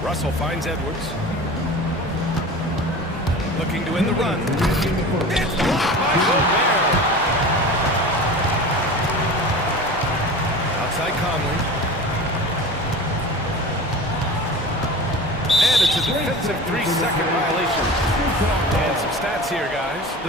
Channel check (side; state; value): both; normal; correlation 0.34